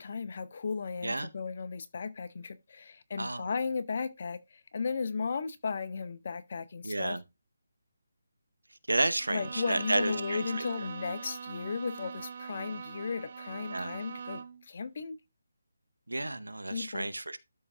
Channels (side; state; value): both; inverted; correlation -0.90